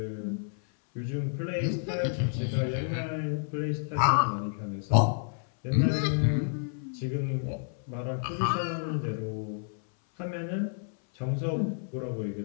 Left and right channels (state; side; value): silent; right; 58 dB below the other